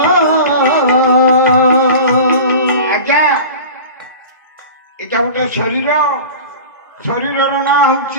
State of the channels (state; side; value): inverted; both; correlation -0.35